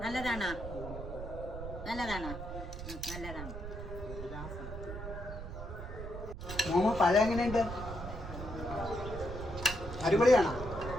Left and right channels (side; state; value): right; noise; rumble, 8 dB below the sound